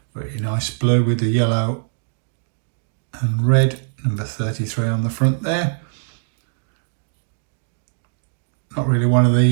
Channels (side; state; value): left; silent; digital silence